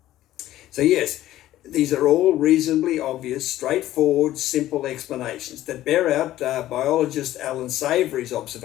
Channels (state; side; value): quieter; right; 14.2 dB